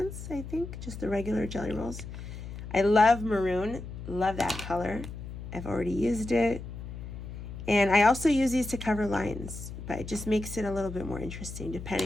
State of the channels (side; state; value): left; noise; hum, 10 dB below the sound